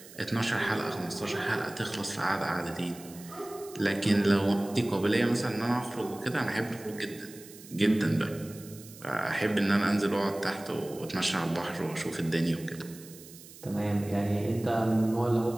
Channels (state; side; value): noise; right; hiss, 19 dB below the sound